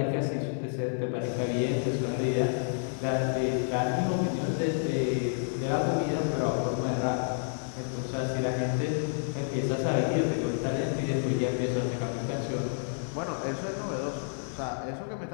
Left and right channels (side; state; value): right; silent; 58 dB below the other